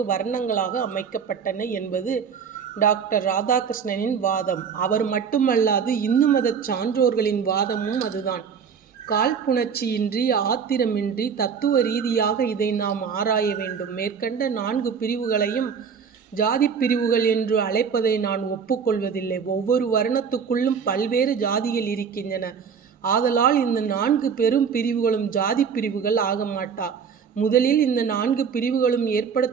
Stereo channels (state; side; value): quieter; left; 6.6 dB